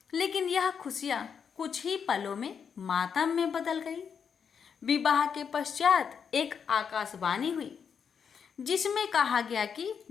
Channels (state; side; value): quieter; right; 6.9 dB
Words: लेकिन यह खुशियां कुछ ही पलों में मातम में बदल गई। विवाह के पश्चात एक आकाशवाणी हुई, जिसमें कहा गया कि